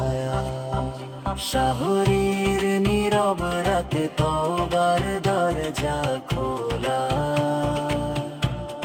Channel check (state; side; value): identical; both; correlation 1.00